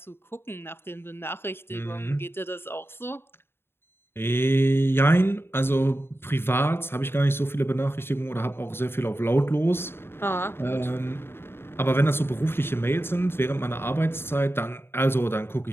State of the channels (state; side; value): late; right; 0.11 ms